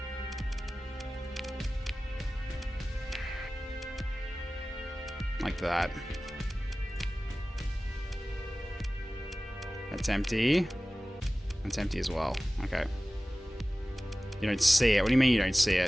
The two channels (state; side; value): normal; both; correlation 0.97